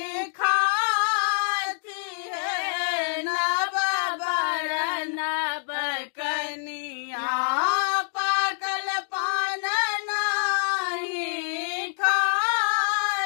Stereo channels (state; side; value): silent; right; digital silence